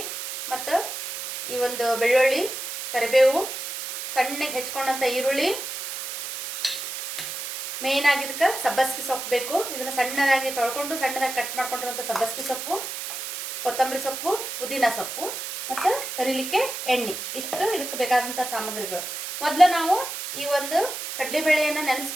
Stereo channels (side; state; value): right; noise; hiss, 7 dB below the sound